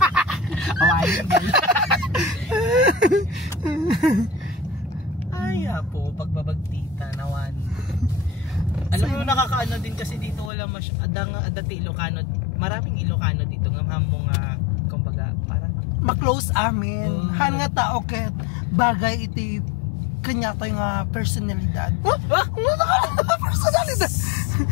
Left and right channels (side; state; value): right; drops out; at 10.5 s